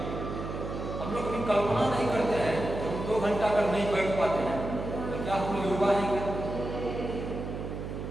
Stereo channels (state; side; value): noise; right; hum, 6 dB below the sound